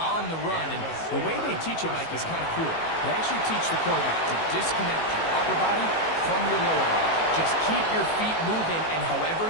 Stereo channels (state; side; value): late; right; 18 ms